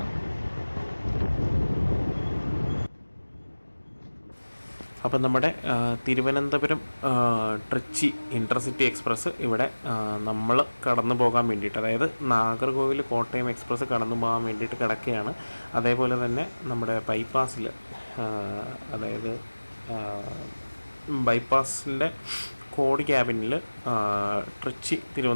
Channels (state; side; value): inverted; both; correlation -1.00